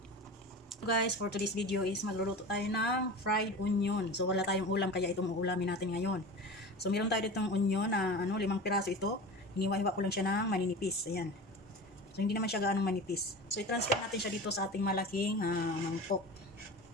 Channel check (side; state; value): both; normal; correlation 0.32